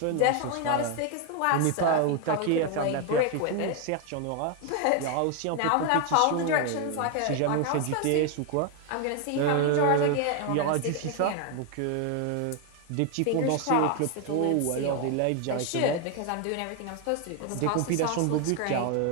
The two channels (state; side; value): different; both; correlation 0.01